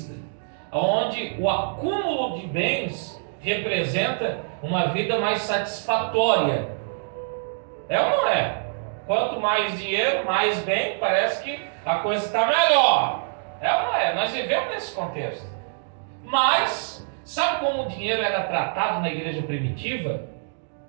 onde o acúmulo de bens representa uma vida mais satisfatória. É ou não é? Quanto mais dinheiro, mais bem, parece que a coisa está melhor. É ou não é? Nós vivemos nesse contexto. Mas sabe como o dinheiro era tratado na igreja primitiva?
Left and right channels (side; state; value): left; silent; digital silence